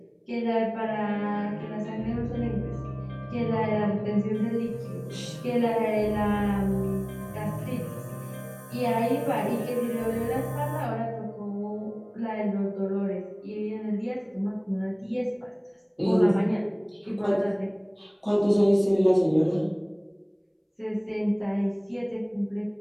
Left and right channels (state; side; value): identical; both; correlation 1.00